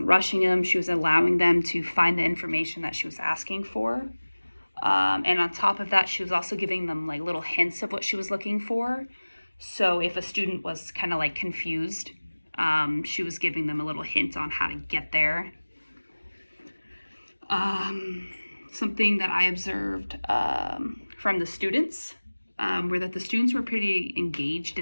rushing them. She was allowing them to find the information that she was asking for. And on top of that, she was also giving them like little hints of what she was looking for. So if a student was kind of like confused, she was giving them a little hint on how to get there. Something that I observed from the students were that the students were pretty engaged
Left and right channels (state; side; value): inverted; both; correlation -1.00